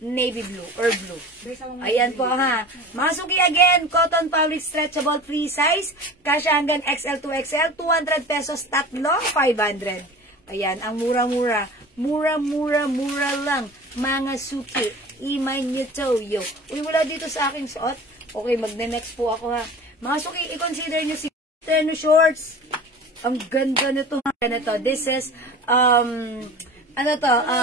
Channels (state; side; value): normal; both; correlation 0.38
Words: navy blue or blue. Ayan po, ha. Mga suki, again, cotton fabric stretchable free size. Kasya hanggang XL to XL. 200 pesos tatlo, 500. Ayan, ang mura-mura. Mura lang. Mga suki, imay nyo to, yo. Uy, wala dito sa aking suot. Okay, magne-next po ako, ha. Mga suki, i-consider nyo si tennis shorts. Ang ganda nito. This is, Ang